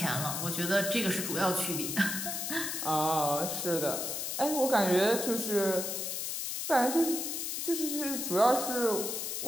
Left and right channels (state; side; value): noise; left; hiss, 3 dB below the sound